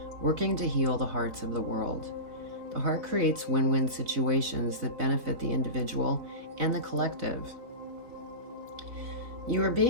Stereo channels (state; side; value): late; left; 4.0 ms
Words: working to heal the hearts of the world. The heart creates win-win situations that benefit the individual and the collective. You are